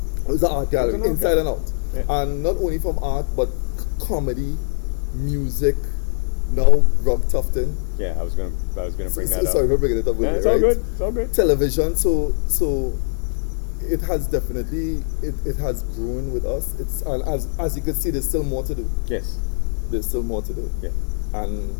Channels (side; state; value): right; silent; digital silence